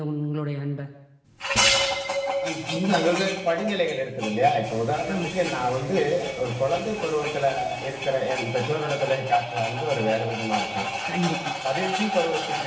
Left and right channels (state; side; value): identical; both; correlation 1.00